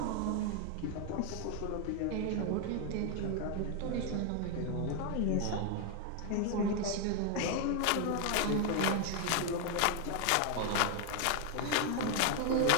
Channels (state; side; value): different; both; correlation 0.00